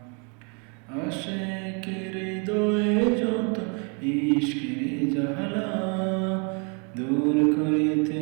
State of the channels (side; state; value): left; quieter; 35.6 dB